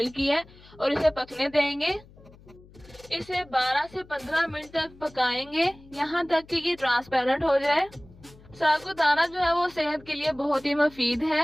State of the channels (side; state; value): left; noise; hum, 24 dB below the sound